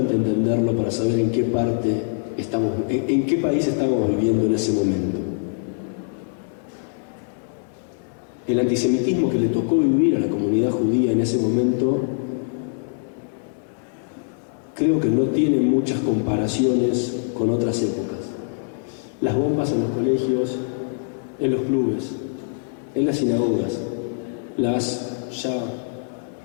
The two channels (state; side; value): silent; right; digital silence